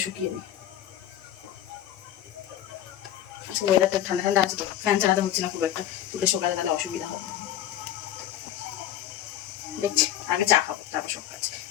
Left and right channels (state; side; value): quieter; right; 12.0 dB